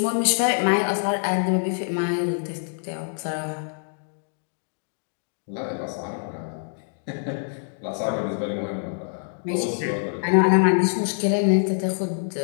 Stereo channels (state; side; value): silent; right; digital silence